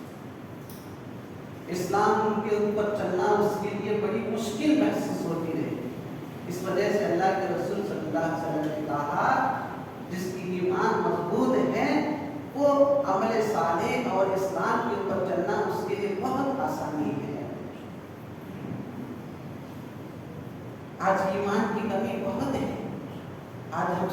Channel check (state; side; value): identical; both; correlation 1.00